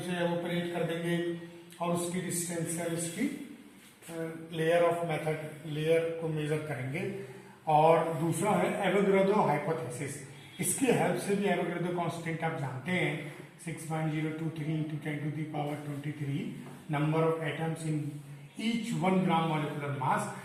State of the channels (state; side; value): identical; both; correlation 1.00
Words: एवोपरेट कर देंगे और उसकी डिस्टेंस से उसकी लेयर ऑफ मेथड लेयर को मेजर करेंगे. और दूसरा है एवोगाड्रो हाइपोथेसिस. इसकी हेल्प से भी एवोगाड्रो कांस्टेंट आप जानते हैं 6.023 into 10 to the power 23 number of atoms in each 1 gram molecular mass.